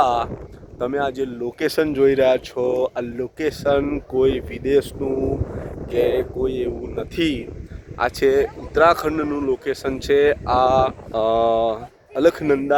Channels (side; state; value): both; identical; correlation 1.00